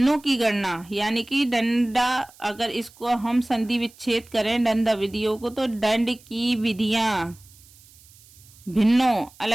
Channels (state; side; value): noise; right; hiss, 25 dB below the sound